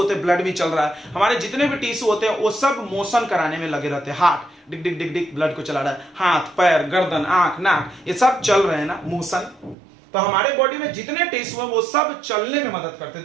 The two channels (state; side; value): drops out; left; at 9.8 s